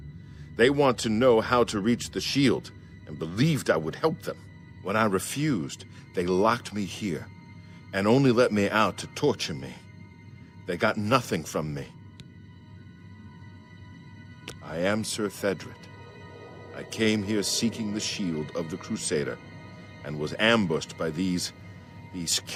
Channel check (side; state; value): both; identical; correlation 1.00